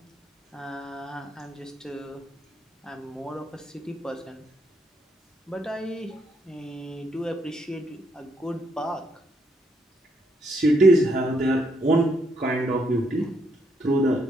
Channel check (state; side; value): normal; both; correlation 0.75